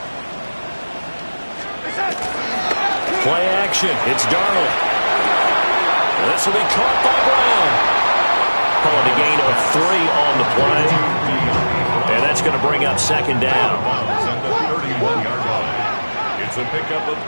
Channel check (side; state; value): both; inverted; correlation -1.00